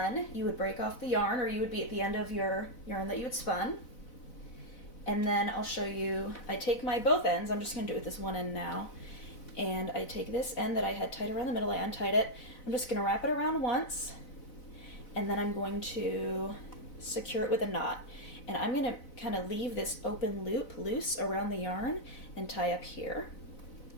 you would break off the yarn, or you would be at the end of your yarn that you had spun. And then I'll show you, I take my both ends, I'm just going to do it with this one end now, and I take this end that I had tied around the middle, I untied it, I'm just going to wrap it around once, and then I'm going to secure it with a knot. And I'm going to kind of leave this open loop loose around the yarn and tie up here.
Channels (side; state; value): right; late; 4.0 ms